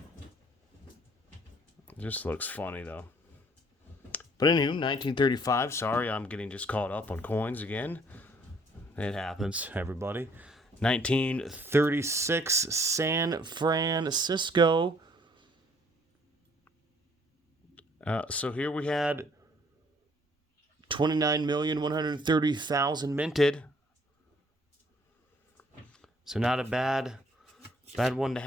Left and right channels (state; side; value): normal; both; correlation 0.61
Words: looks funny, though. But anywho, 1935. Sorry, I'm getting just caught up on coins again. It happens, everybody. 1936, San Francisco. So here we had 29,130,000 minted. So not a bad one to